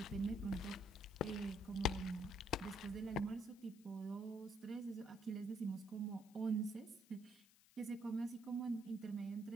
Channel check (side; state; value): left; noise; hiss, 25 dB below the sound